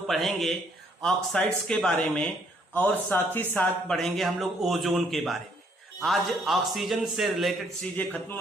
पढ़ेंगे ऑक्साइड्स के बारे में और साथ ही साथ पढ़ेंगे हम लोग ओजोन के बारे में। आज ऑक्सीजन से रिलेटेड चीजें खत्म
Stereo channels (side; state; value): both; normal; correlation 0.67